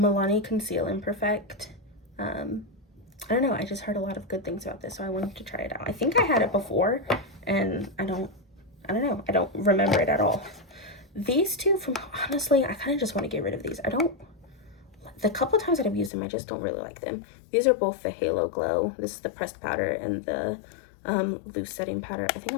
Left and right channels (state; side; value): drops out; right; at 16.1 s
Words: Conceal Imperfect. I don't know, I just heard a lot of good things about this, so I wanted to try it out. I think I had it before, and I don't know, I don't remember it at all. These two from, honestly, I kind of just want to get rid of these. The couple times that I've used them, I just don't really like them. These are both the Halo Glow. This is the pressed powder and the loose setting powder. I think